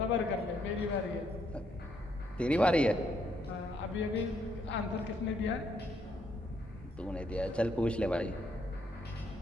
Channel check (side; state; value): both; normal; correlation 0.73